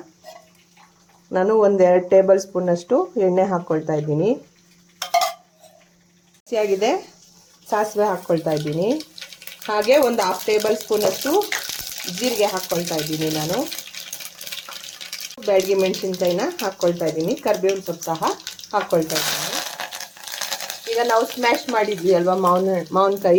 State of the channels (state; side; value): identical; both; correlation 1.00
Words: ನಾನು 1-2 ಟೇಬಲ್ ಸ್ಪೂನಷ್ಟು ಎಣ್ಣೆ ಹಾಕ್ಕೊಳ್ತಾ ಇದ್ದೀನಿ. ಹಸಿಯಾಗಿದೆ ಸಾಸಿವೆ ಹಾಕ್ಕೊಳ್ತಾ ಇದ್ದೀನಿ. ಹಾಗೆ ಒಂದು 1/2 ಟೇಬಲ್ ಸ್ಪೂನಷ್ಟು ಜೀರಿಗೆ ಹಾಕ್ಕೊಳ್ತಾ ಇದ್ದೀನಿ. ನಾನು ಬ್ಯಾಡಗಿ ಮೆಣಸಿನ್ಕಾಯಿನ ಹಾಕ್ಕೊಳ್ತಾ ಇದ್ದೀನಿ. ಕರಿಬೇವಿನ ಸೊಪ್ಪು ಸಹ ಹಾಕ್ಕೊಳ್ತಾ ಇದ್ದೀನಿ. ಈಗ ನಾವು ಸ್ಮ್ಯಾಶ್ ಮಾಡಿದ್ವಿ ಅಲ್ವಾ